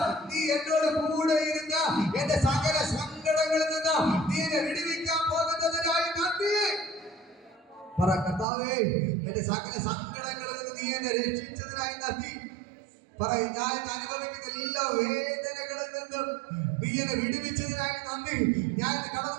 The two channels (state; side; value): drops out; left; at 8.5 s